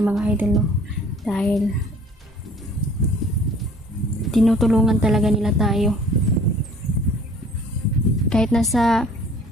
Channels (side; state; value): both; normal; correlation 0.52